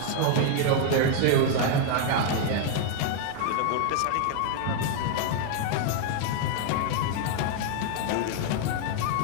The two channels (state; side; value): different; both; correlation 0.00